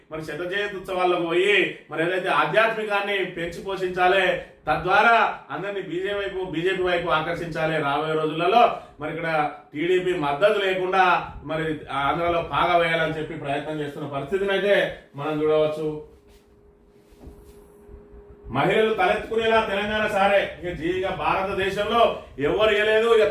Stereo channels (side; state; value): both; identical; correlation 1.00